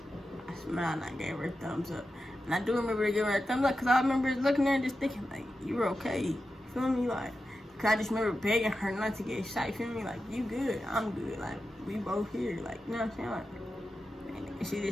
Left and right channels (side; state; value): both; normal; correlation 0.91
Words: I smiled and I gave her a thumbs up. And I do remember giving her a thumbs up because I remember looking at her and just thinking like, you're okay, you feel me? Like, Cause I just remember begging her not to get shot. You feel me? Like, you good, I'm good. Like, we both here. Like, you know what I'm saying? Like, and she